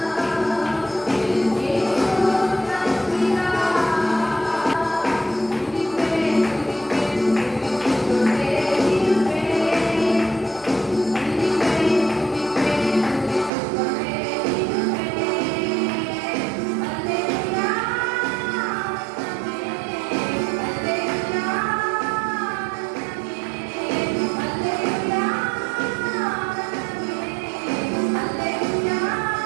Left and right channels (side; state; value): left; drops out; at 13.5 s